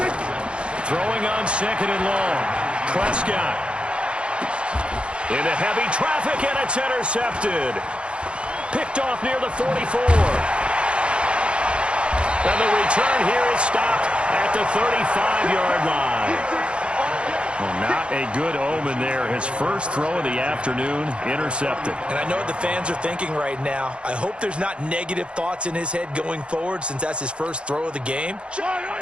Throwing on 2nd and long. Prescott. Into heavy traffic, and it's intercepted. Picked off near the 44. And the return here is stopped at the 35-yard line. Well, not a good omen there. His first throw of the afternoon, intercepted. And I know what the fans are thinking right now. I hope there's not negative thoughts in his head going forward since that's his first throw of the game.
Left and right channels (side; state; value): left; late; 0.058 ms